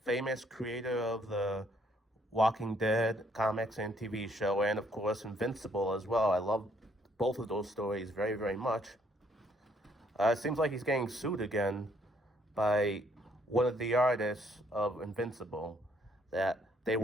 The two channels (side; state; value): both; normal; correlation 0.67